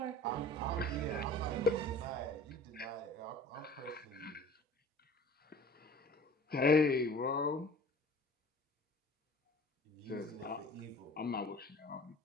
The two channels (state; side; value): normal; both; correlation 0.45